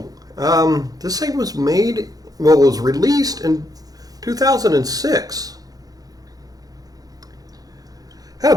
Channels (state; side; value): late; left; 0.18 ms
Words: This thing was was released in 2006.